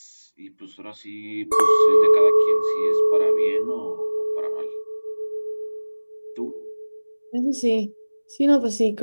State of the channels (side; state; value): both; inverted; correlation -1.00